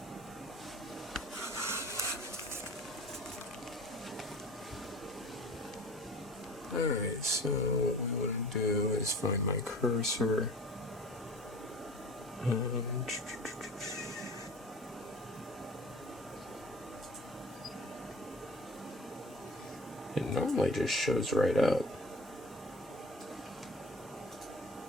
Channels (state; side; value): normal; both; correlation 0.42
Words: Alright, so what we want to do is find my cursor. It normally just shows right up.